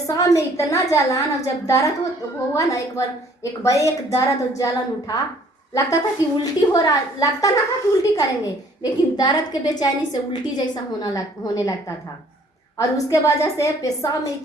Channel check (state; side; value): normal; both; correlation 0.59